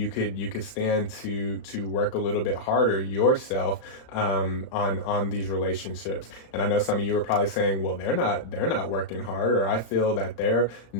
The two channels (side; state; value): right; late; 35 ms